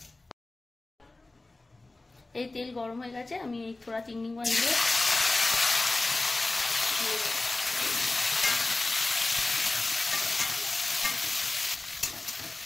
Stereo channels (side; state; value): right; quieter; 3.1 dB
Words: এই তেল গরম হয়ে গেছে আমি এই থোড়া চিংড়ি মাছ দিয়ে